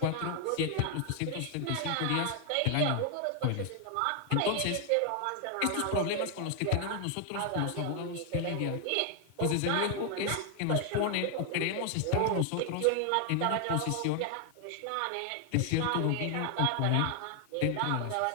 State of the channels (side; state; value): both; different; correlation 0.00